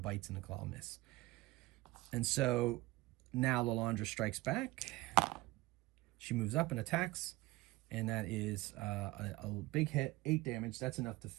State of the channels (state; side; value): quieter; left; 19.8 dB